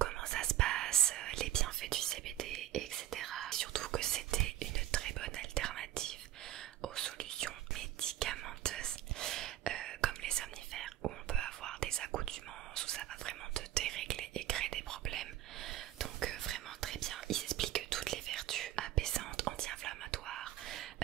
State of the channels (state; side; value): quieter; left; 13.0 dB